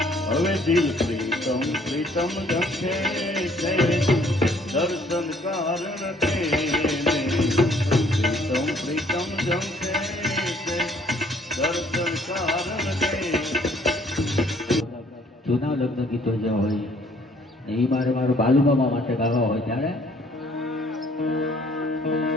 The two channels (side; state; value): both; normal; correlation 0.61